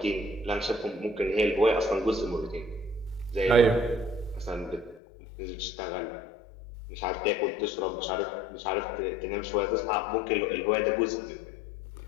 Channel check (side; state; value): right; drops out; at 5.0 s